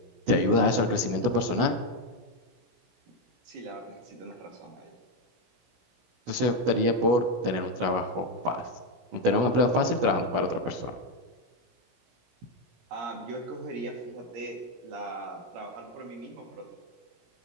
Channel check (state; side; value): late; left; 16 ms